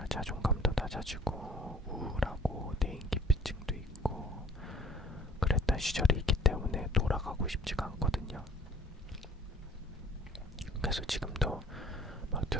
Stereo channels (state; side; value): normal; both; correlation 0.55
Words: 자존감도 낮아지고 우울하고 대인기피증도 있고 그랬던 시절이 있기 때문에 돌아가고 싶지가 않거든요. 그래서 지금도 막